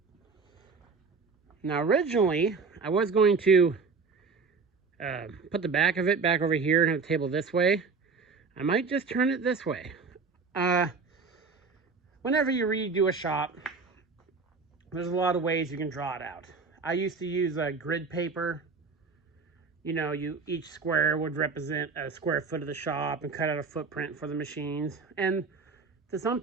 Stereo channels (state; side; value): quieter; left; 4.8 dB